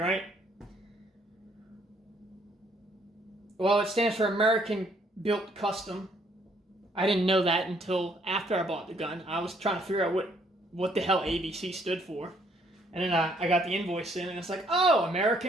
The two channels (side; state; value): both; normal; correlation 0.66